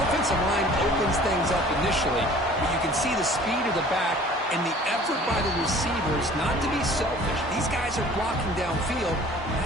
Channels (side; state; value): both; normal; correlation 0.49